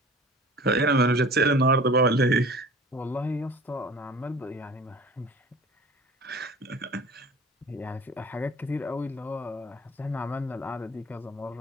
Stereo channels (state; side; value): normal; both; correlation 0.43